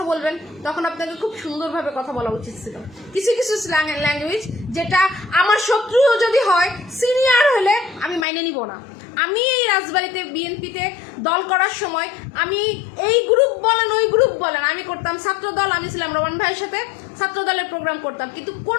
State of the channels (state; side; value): drops out; right; at 8.2 s